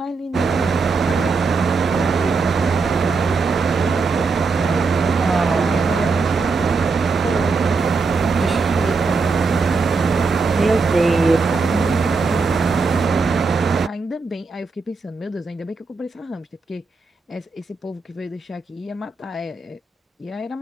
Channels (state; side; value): quieter; left; 4.3 dB